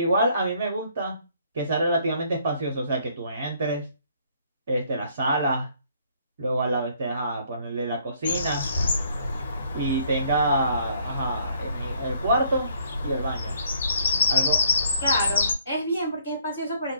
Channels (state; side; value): inverted; both; correlation -0.64